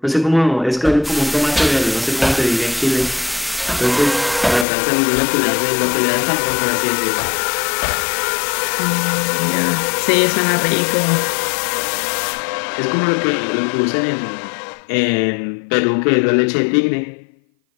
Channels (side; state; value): right; drops out; at 4.7 s